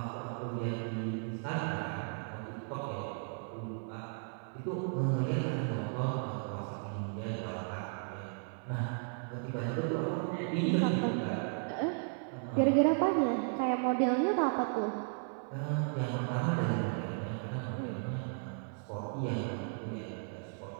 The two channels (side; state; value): left; silent; 54 dB below the other